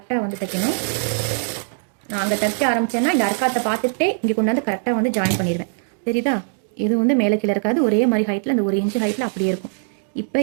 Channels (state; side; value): silent; left; digital silence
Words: வந்து தைக்கணும். நான் அங்கே தைக்க ஆரம்பித்தேன்னா இந்த அர்க்காத்தை பார்த்துட்டே இங்கே கொண்டாந்து கரெக்டாக வந்து ஜாயின் பண்ணிடுவேன். தெரியுதா? இது வந்து மேலே கீழே இருக்காது, ஒரே மாதிரி ஹைட்டில், அந்த 1 இன்ச்சு ஹைட்டில் அப்படியே இருக்கும். இப்போ